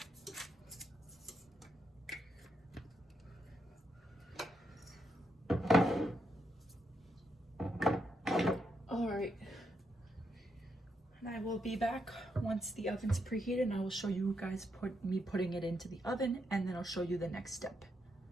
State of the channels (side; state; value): both; normal; correlation 0.80